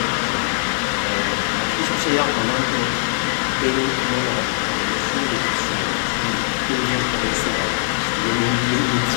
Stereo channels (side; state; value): right; silent; 65 dB below the other